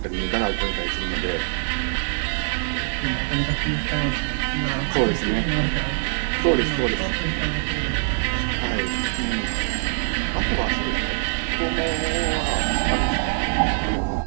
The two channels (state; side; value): silent; left; digital silence